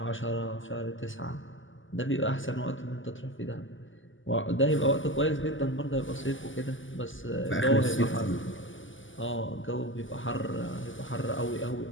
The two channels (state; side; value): late; right; 0.57 ms